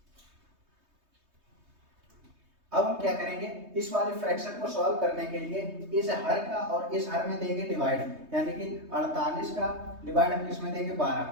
अब हम क्या करेंगे, इस वाले फ्रैक्शन को सॉल्व करने के लिए इस हर का और इस हर में देंगे डिवाइड, यानी कि 48 का डिवाइड हम किसमें देंगे, 12।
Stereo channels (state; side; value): late; left; 3.2 ms